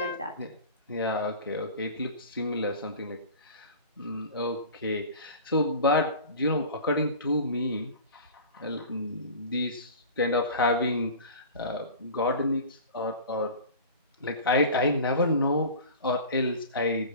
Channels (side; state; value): both; inverted; correlation -0.37